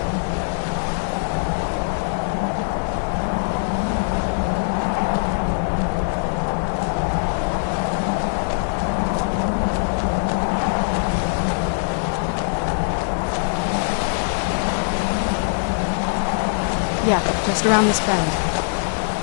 Yeah, just around this bend.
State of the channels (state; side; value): silent; right; 64 dB below the other